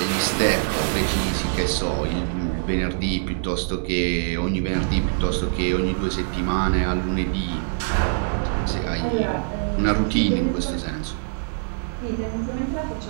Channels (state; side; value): silent; left; 63 dB below the other